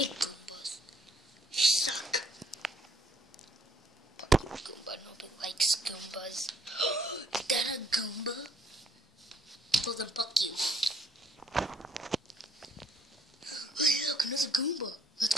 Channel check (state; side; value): normal; both; correlation 0.65